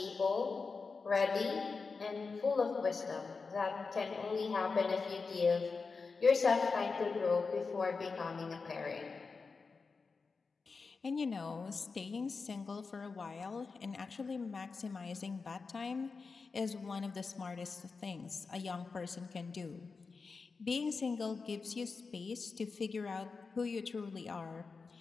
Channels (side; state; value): right; quieter; 4.6 dB